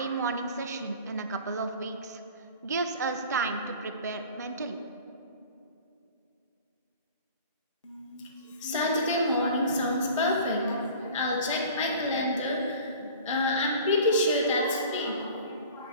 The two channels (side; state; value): both; inverted; correlation -0.43